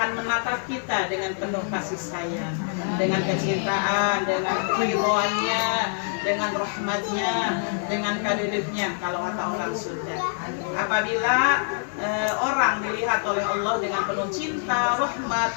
menatap kita dengan penuh kasih sayang, dengan kecintaan, dengan ridhonya, dengan rahmatnya, dengan kadedeknya kalau kata orang Sunda. Apabila orang dilihat oleh Allah dengan penuh cinta, rahmat,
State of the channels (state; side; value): silent; right; 62 dB below the other